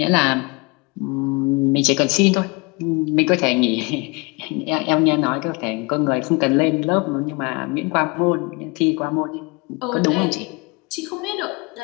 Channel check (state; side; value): quieter; right; 27.6 dB